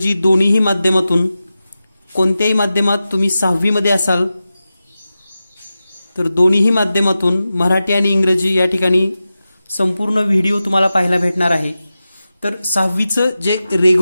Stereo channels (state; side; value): inverted; both; correlation -0.93